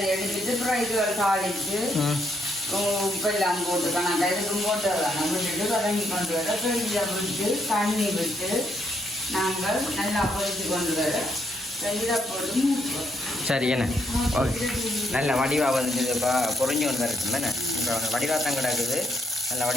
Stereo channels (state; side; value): normal; both; correlation 0.75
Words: எடுத்துட்டு அப்புறம் இது தாளிச்சு உப்பெல்லாம் போட்டு கணக்கா இதுக்கும் போட்டு வரலாம் விட்டுட்டு வதங்கி கொண்டு வர ஃப்ரிட்ஜில் விட்டு தண்ணி விட்டு நாங்கள் நல்லா பொரிச்சு கொண்டு வர இதை போட்டு மூக்குவோம். சரி என்ன ஓகே நல்ல வடிவாக வந்துட்டு இப்போ பொறிஞ்சு கொண்டு வரட்டும் தானே இப்போ வடிவாக தான் கிடக்குது நல்ல